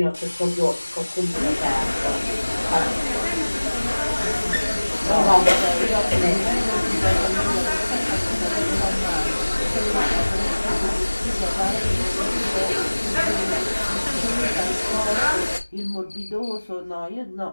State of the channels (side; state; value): both; inverted; correlation -1.00